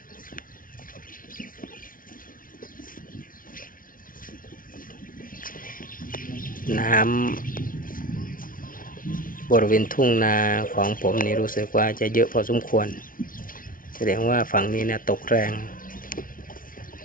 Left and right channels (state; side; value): late; right; 0.40 ms